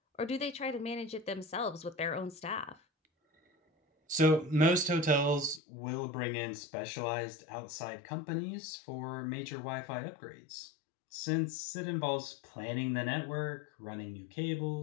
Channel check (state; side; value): drops out; right; at 5.6 s